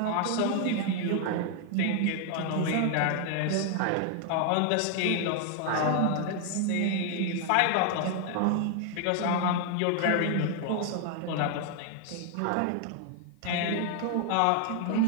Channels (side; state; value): both; different; correlation 0.00